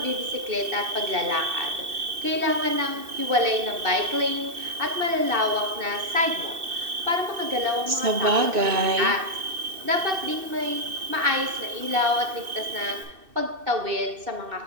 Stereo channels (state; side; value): late; left; 2.6 ms